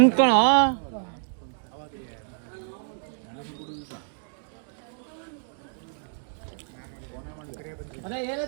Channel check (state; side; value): silent; left; digital silence